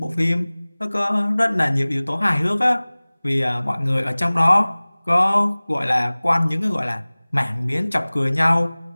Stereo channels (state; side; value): inverted; both; correlation -1.00